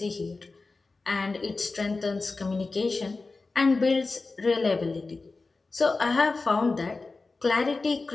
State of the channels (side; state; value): right; quieter; 3.7 dB